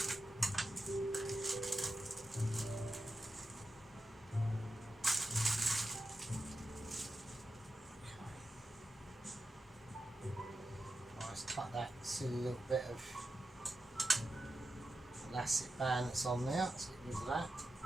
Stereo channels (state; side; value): normal; both; correlation 0.90